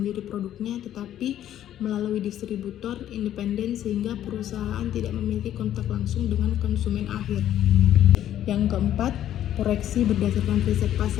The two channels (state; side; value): quieter; right; 11.5 dB